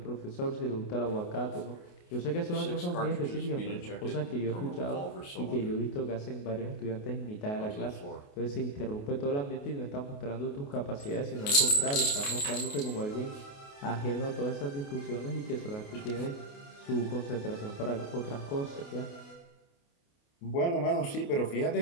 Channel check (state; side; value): late; right; 28 ms